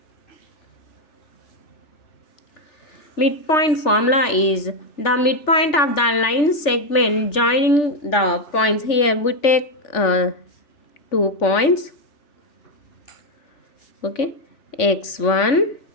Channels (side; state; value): right; late; 3.4 ms